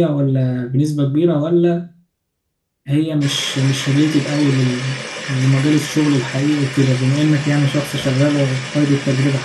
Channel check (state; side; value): identical; both; correlation 1.00